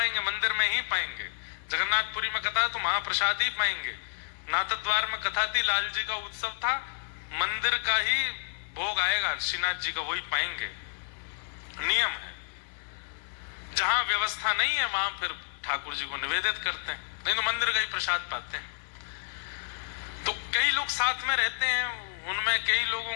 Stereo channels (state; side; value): silent; right; digital silence